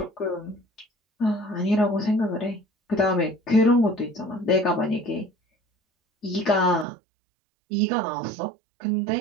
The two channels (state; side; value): drops out; left; at 6.9 s